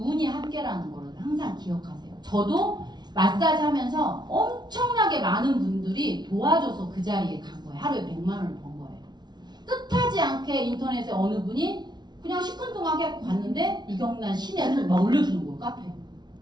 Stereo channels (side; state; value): left; late; 0.20 ms